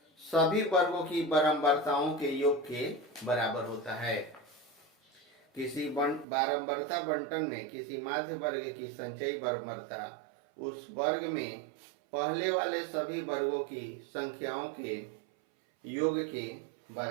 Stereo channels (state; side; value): drops out; left; at 6.2 s